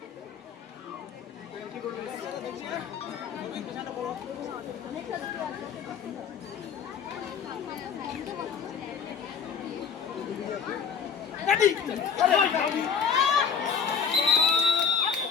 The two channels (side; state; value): right; quieter; 6.8 dB